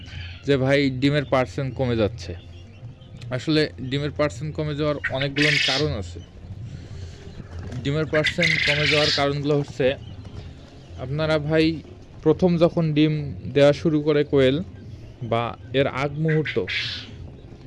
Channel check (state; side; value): identical; both; correlation 1.00